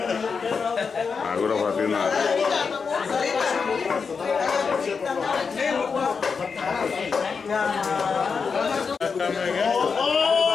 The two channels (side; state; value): right; quieter; 5.4 dB